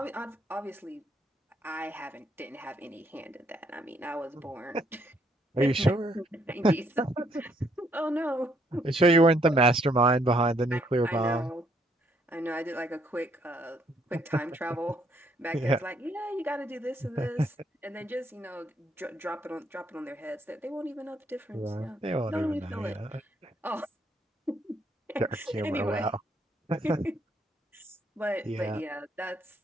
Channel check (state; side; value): normal; both; correlation 0.70